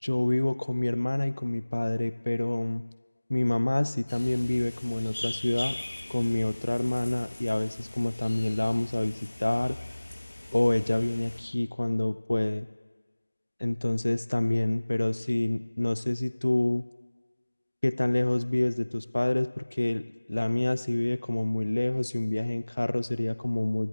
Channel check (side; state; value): both; inverted; correlation -1.00